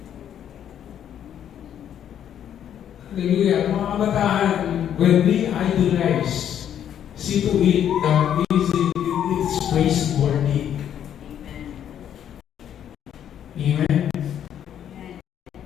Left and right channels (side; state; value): right; quieter; 9.8 dB